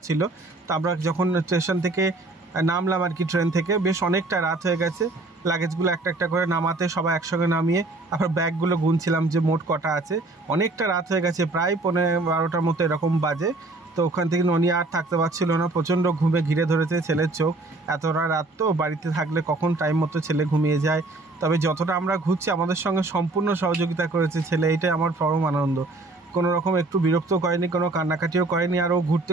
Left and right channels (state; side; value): quieter; left; 3.0 dB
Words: তো আমরা যখন স্টেশন থেকে নামলাম আর কি, ট্রেন থেকে, বেশ অনেকটা রাত হয়ে গেছে। লাগেজগুলো একটা একটা করে নামাতে সবাই একসঙ্গে নামিয়ে আবার ব্যাগগুলো গুনছিলাম যে মোট কটা আছে। অনেকটা রাত হয়ে গেছে, প্রায় 11:15 মতো এরকম বাজে। তো ওখান থেকে ননি আর থাকতে পারছিল না, প্রচণ্ড ঘুমে ঘিরে ধরেছে ছেলের চোখ। এতটা রাত তো বাড়িতে থাকলে কখন টাইম মতো ছেলে ঘুমিয়ে যায়। তবে যতটা আমরা ঘুরছি আমাদের সঙ্গে সম্পূর্ণ সহযোগিতা করেছে ছেলে, এইটাই আমার পরম আনন্দ। কোনো রকম একটু বিরক্ত করেনি, কোনো কান্নাকাটিও করেনি। আর ও ঘুরতে